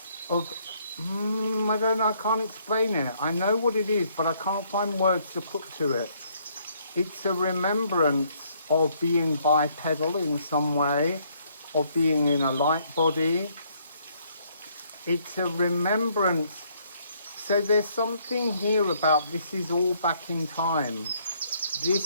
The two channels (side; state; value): both; inverted; correlation -0.68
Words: of, I don't know, I can't explain it. I know what it is, but I can't find words to put to it. It's a remembrance of being bipedal in some way, of being in a light body. It's a remembrance. So there's something here about this is all back in time.